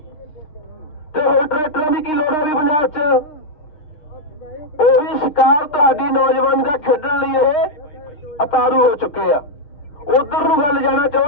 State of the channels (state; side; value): late; right; 6.5 ms